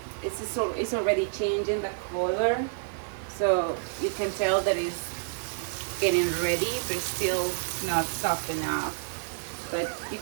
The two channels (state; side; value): silent; left; digital silence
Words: it's already changing the color, so you can tell that it's getting ready, but it's still not soft enough. But you